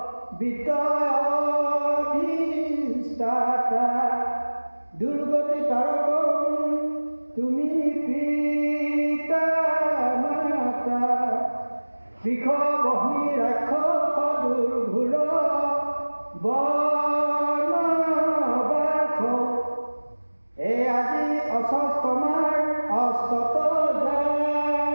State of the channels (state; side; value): inverted; both; correlation -1.00